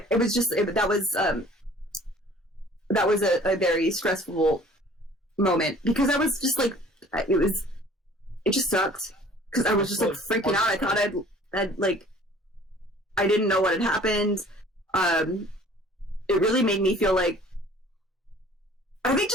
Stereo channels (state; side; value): normal; both; correlation 0.51